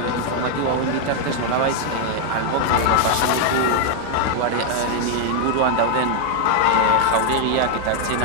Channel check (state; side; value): different; both; correlation 0.00